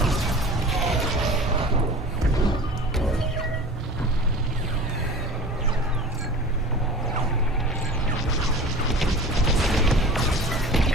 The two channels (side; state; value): both; normal; correlation 0.38